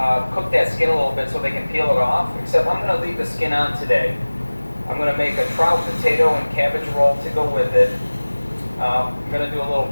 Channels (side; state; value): both; inverted; correlation -1.00